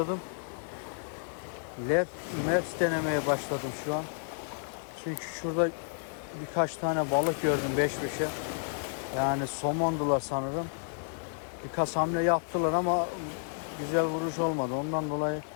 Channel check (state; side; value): silent; right; digital silence